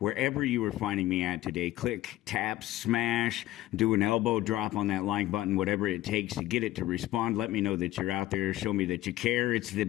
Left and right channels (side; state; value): right; quieter; 15.8 dB